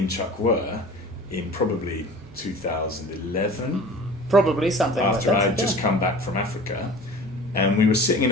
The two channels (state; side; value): normal; both; correlation 0.41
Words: Chuck were in probably 2011, Probably something after like that. I'd just come back from Africa. And we were sitting in